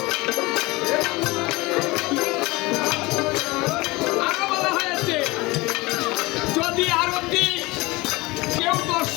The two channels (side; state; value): right; quieter; 22.5 dB